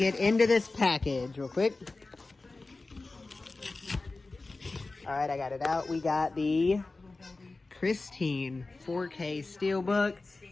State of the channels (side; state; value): right; quieter; 3.4 dB